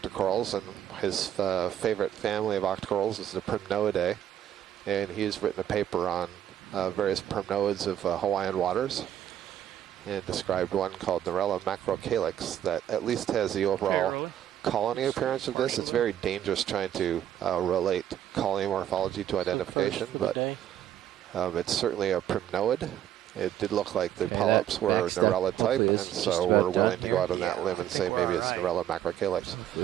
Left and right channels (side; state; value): left; quieter; 11.0 dB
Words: and his favorite family of octocorals is the Primnoidae, and he's written a paper on various primnoids of Hawaiian waters, and described one called Narella macrocalyx that at least has the overall colony appearance of this. It's very dangerous trying to relate colony morphology to identification, but it's certainly a primnoid. It did look like the polyps were Narella type, and so we're willing to go out on that limb and say maybe it's Narella macrocalyx.